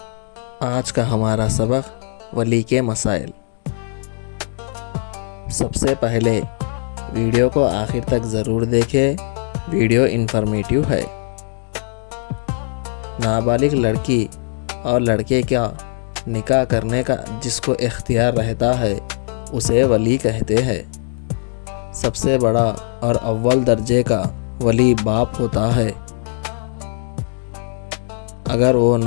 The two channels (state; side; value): silent; right; digital silence